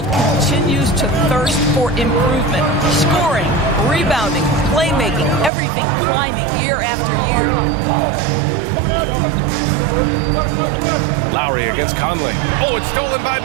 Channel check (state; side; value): drops out; left; at 5.5 s